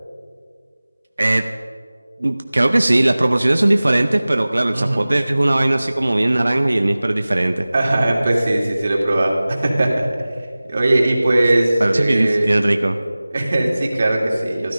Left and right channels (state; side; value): inverted; both; correlation -0.98